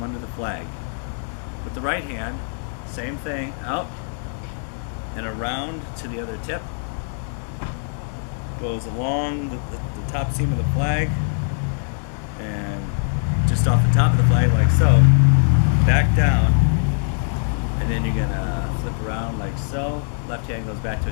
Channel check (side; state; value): right; silent; 64 dB below the other